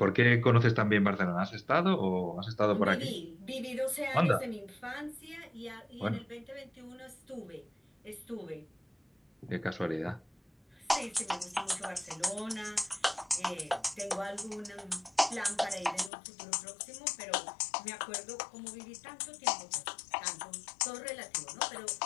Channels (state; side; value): drops out; right; at 16.1 s